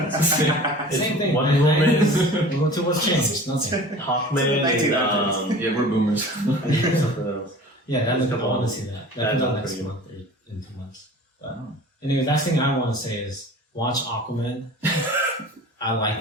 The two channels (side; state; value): both; normal; correlation 0.41